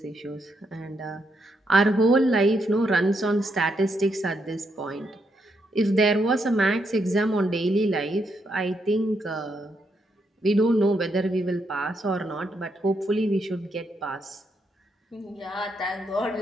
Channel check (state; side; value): normal; both; correlation 0.79